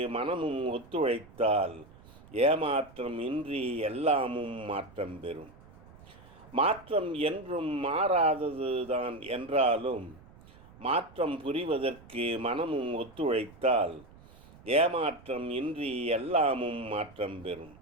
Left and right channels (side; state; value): right; noise; rumble, 22 dB below the sound